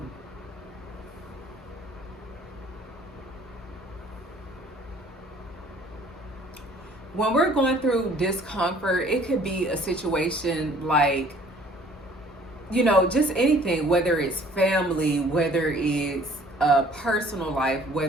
When we're going through discomfort, it could be a situation like, just anything, whether it's family, whether it's personal life,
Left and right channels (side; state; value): both; normal; correlation 0.55